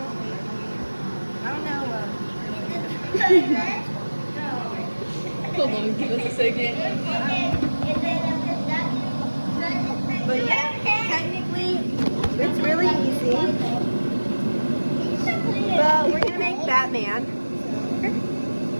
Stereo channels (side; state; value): both; inverted; correlation -1.00